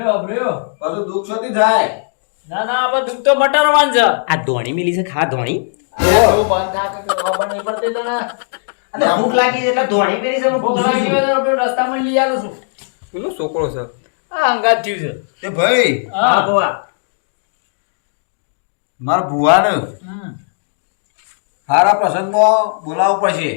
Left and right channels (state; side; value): silent; right; 68 dB below the other